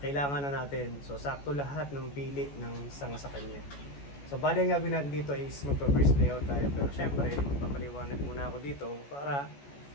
na natin. So sakto lahat ng pili ng isang sa kanya. So bali ang gagawin natin dito is magpa-first layout tayo, pero syempre magpapaliwanag muna ako dito para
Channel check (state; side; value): late; right; 14 ms